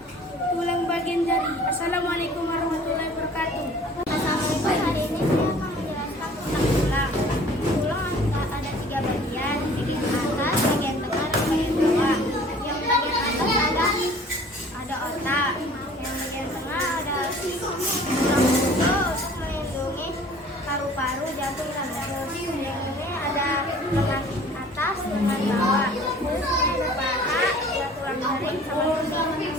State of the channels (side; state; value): both; normal; correlation 0.50